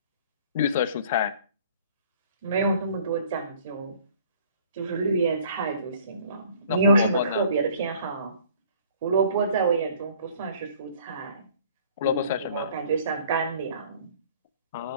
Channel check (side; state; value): both; inverted; correlation -0.53